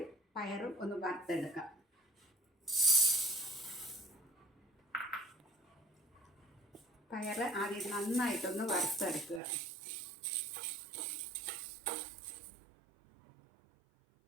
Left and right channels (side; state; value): left; drops out; at 9.4 s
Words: പയർ ഒന്ന് വറുത്തെടുക്കാം. പയർ ആദ്യം നന്നായിട്ടൊന്ന് വറുത്തെടുക്കുക.